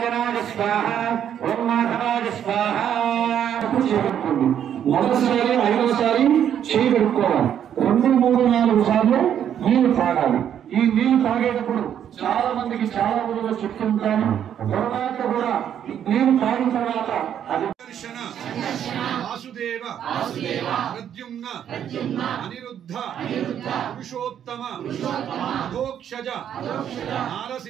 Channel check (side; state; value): left; quieter; 9.5 dB